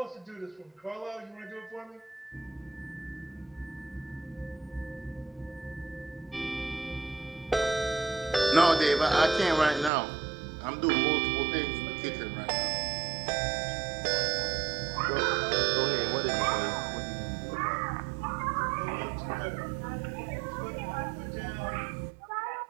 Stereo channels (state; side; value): drops out; left; at 9.9 s